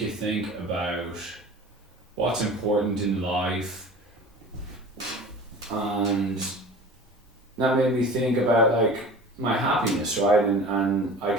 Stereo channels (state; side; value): normal; both; correlation 0.39